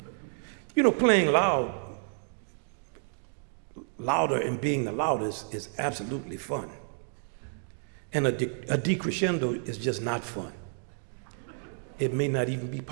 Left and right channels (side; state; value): left; silent; 58 dB below the other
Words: You know, playing louder and being the loudest is absolutely fun. And a decrescendo is just not fun. It may not even be